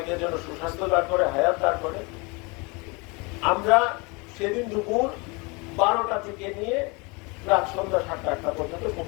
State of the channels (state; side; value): quieter; right; 28.5 dB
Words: যেন সুস্বাস্থ্য দান করে, হায়াত দান করে। আমরা সেদিন দুপুর 12টা থেকে নিয়ে রাত সন্ধ্যা 7টা পর্যন্ত